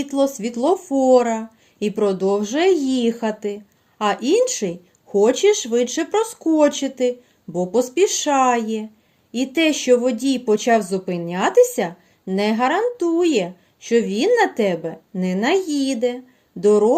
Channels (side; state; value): both; identical; correlation 1.00